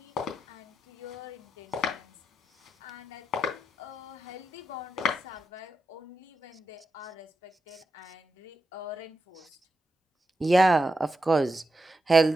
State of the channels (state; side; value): normal; both; correlation 0.87